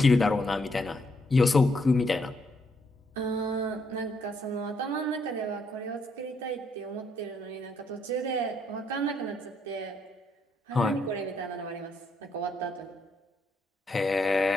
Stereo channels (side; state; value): both; normal; correlation 0.74